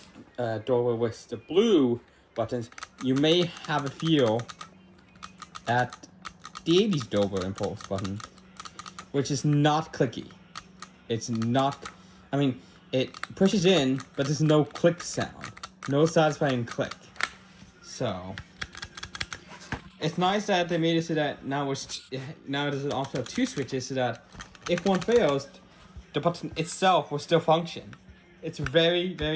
Dover with the blue buttons, you may have a feel at the 80s Dover Impulse button, which is not clicky. It's not, I mean, it pushes in, but there's no click sound. No satisfying click. So it's nice that they made it so that now there's an option of two switches so that if one fails, the button itself will still function. It's very,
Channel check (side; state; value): both; identical; correlation 1.00